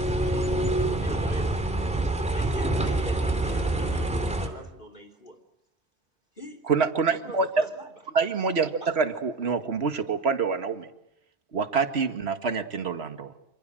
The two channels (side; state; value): left; quieter; 3.1 dB